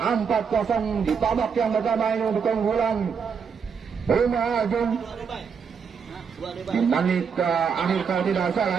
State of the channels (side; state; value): left; quieter; 6.3 dB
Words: 4-0 di babak yang pertama ini untuk keunggulan Puma Ajun. Di menit akhir kalau tidak